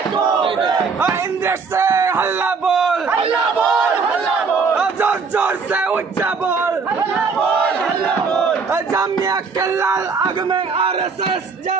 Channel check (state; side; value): quieter; left; 5.0 dB